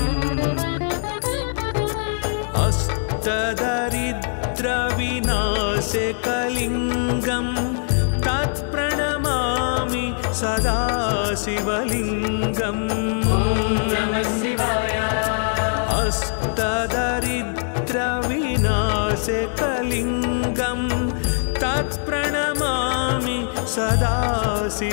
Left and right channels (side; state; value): right; silent; 62 dB below the other